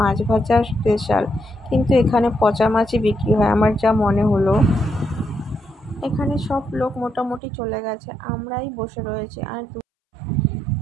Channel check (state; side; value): drops out; left; at 7.4 s